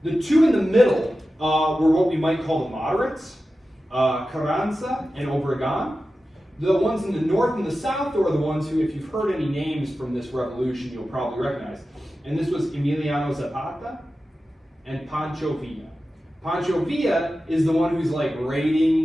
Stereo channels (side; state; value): both; normal; correlation 0.93